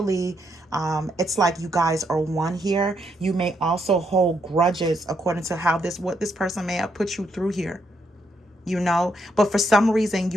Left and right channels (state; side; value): normal; both; correlation 0.77